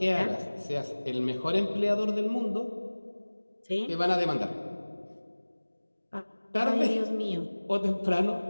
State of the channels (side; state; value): both; inverted; correlation -1.00